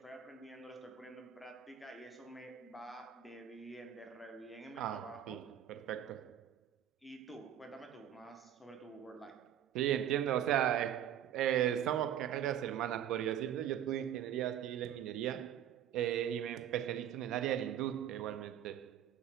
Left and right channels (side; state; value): left; quieter; 10.4 dB